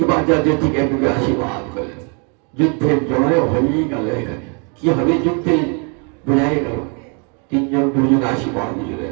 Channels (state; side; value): quieter; left; 36.8 dB